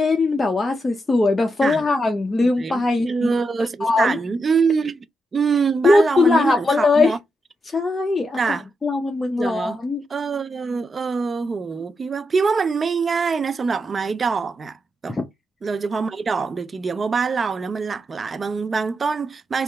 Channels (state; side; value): normal; both; correlation 0.84